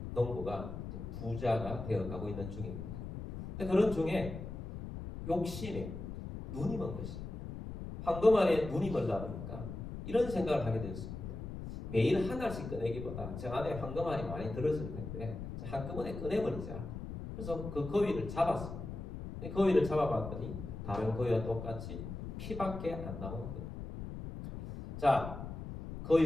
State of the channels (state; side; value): noise; left; rumble, 8 dB below the sound